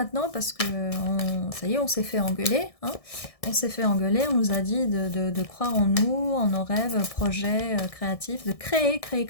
Parce que ça y est, on s'est fait engueuler. Hein, on s'est fait engueuler, on nous a dit de croire en nous, en nos rêves, projets créatifs, de créer.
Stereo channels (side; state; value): right; late; 1.6 ms